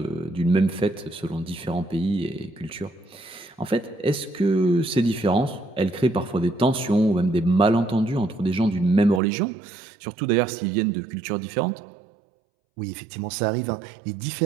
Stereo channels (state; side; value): drops out; left; at 9.2 s